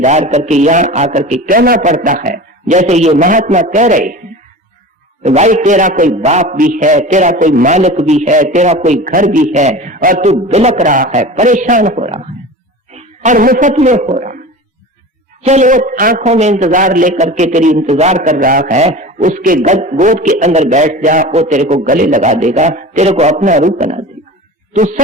करके यहाँ आकर के कहना पड़ता है, जैसे ये महात्मा कह रहे हैं, भाई तेरा कोई बाप भी है, तेरा कोई मालिक भी है, तेरा कोई घर भी है, और तू बिलक रहा है, परेशान हो रहा है और मुफ्त में हो रहा है। चल वो आंखों में इंतजार लेकर के तेरी इंतजार कर रहा है, उसके गोद के अंदर बैठ जा, वो तेरे को गले लगा देगा, तेरे को अपना रूप बना देगा। तू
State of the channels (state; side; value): normal; both; correlation 0.34